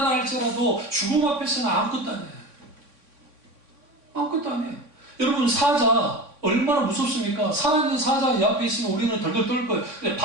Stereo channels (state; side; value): late; left; 3.6 ms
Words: 할지라도 죽음 앞에서는 아무것도 안 해요. 아무것도 안 해요. 여러분, 사자 얼마나 무섭습니까? 살아있는 사자 옆에 있으면 우리는 덜덜 떨 거예요. 근데